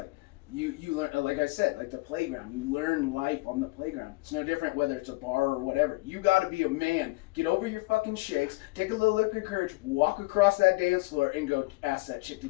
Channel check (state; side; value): quieter; right; 24.0 dB